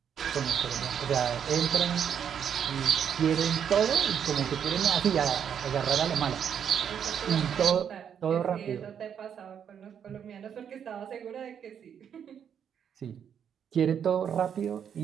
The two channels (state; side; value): quieter; left; 8.2 dB